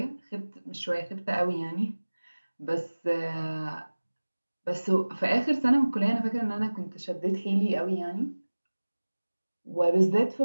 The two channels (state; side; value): inverted; both; correlation -1.00